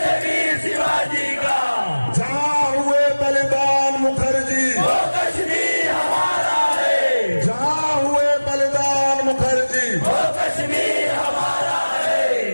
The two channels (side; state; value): both; inverted; correlation -1.00